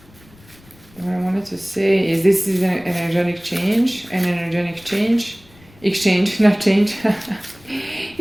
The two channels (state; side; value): noise; left; rumble, 26 dB below the sound